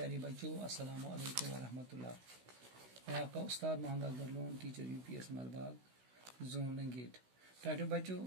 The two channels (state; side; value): late; left; 16 ms